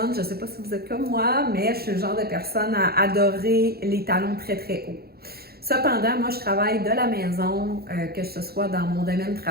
je ne sais pas si vous êtes comme moi, mais je suis le genre de personne à adorer les talons très, très hauts. Cependant, moi, je travaille de la maison, que ce soit dans mon domaine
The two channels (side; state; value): left; late; 0.45 ms